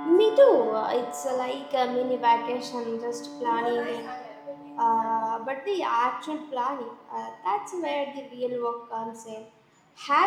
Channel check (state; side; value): identical; both; correlation 1.00